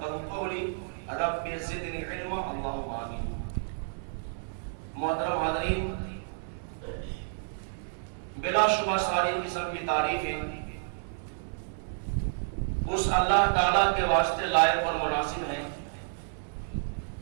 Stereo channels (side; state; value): left; silent; digital silence